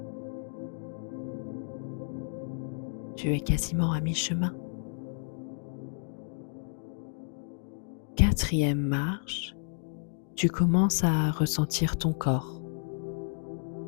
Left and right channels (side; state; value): right; silent; digital silence